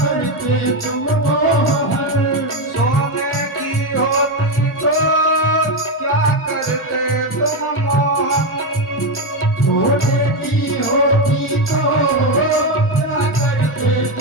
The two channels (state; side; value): normal; both; correlation 0.10